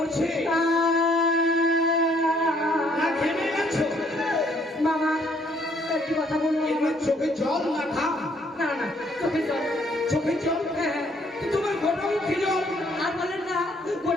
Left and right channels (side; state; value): both; normal; correlation 0.65